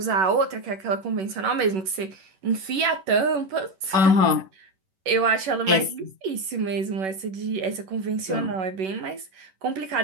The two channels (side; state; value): left; late; 11 ms